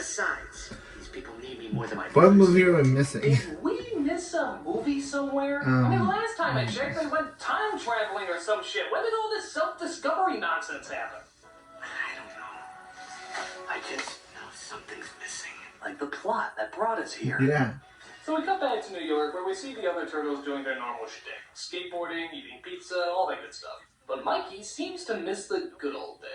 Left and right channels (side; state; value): both; identical; correlation 1.00